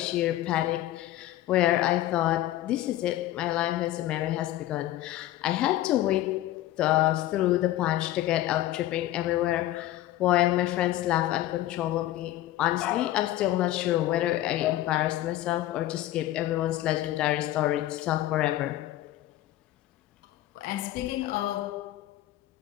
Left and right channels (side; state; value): right; quieter; 14.6 dB